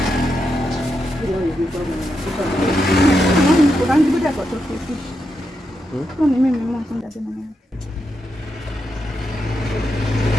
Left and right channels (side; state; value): both; normal; correlation 0.85